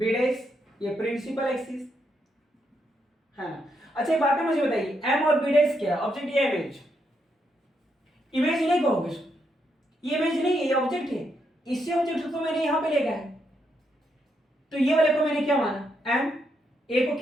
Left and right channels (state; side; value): normal; both; correlation 0.79